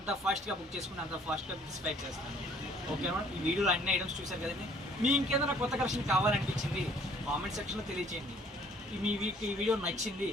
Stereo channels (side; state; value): both; normal; correlation 0.58